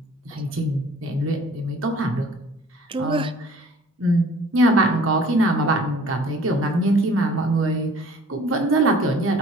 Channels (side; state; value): both; normal; correlation 0.51